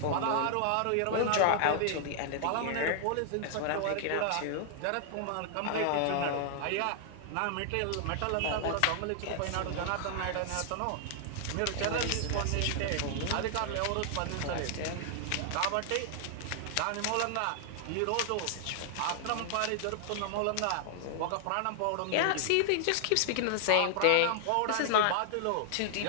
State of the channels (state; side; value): different; both; correlation -0.01